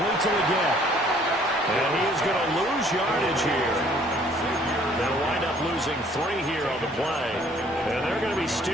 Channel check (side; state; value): both; normal; correlation 0.59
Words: to again. And he is going to lose yardage here. They'll wind up losing 3 here on the play. And they're going to be